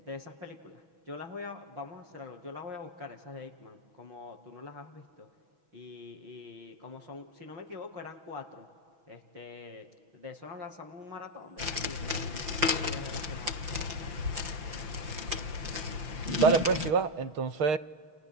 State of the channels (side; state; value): left; late; 5.8 ms